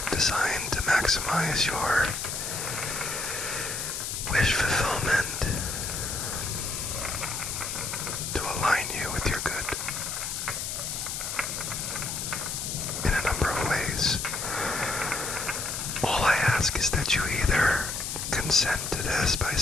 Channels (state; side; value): noise; left; hiss, 4 dB below the sound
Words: designed to maximize your wish fulfillment, to align you with your good in a number of ways. All I ask is that you either consent to this by